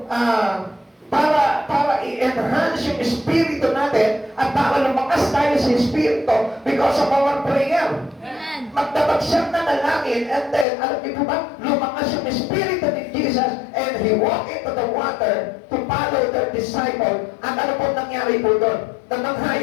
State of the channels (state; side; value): drops out; right; at 10.7 s